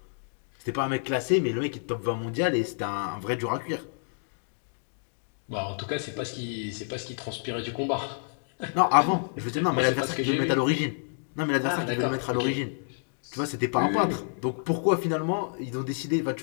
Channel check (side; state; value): right; silent; digital silence